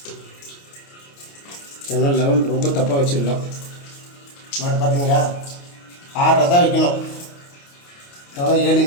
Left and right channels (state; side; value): late; right; 29 ms